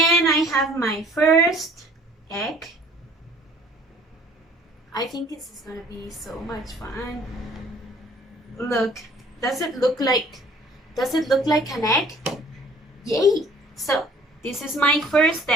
I have my first egg. I think this is gonna be so much fun. Look, does it look like an egg? Yay! So this is my first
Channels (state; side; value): normal; both; correlation 0.55